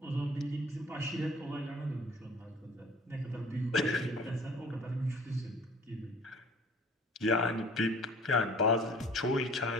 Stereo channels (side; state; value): both; normal; correlation 0.49